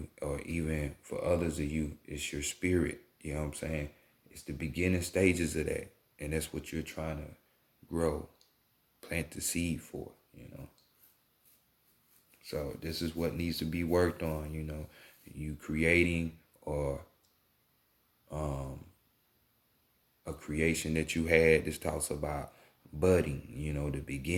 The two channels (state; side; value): identical; both; correlation 1.00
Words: or even for others of you, it's your spirit, you know what I'm saying? It's the beginning stages of that. And that's what you're trying to grow, plant the seed for, So this is what needs to be worked on, you creating or a creation that you had. This talks about budding, the